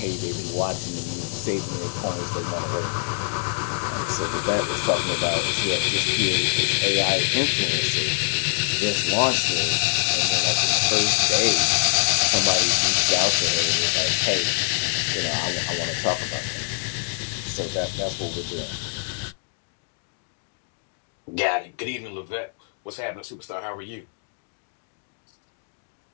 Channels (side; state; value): right; silent; digital silence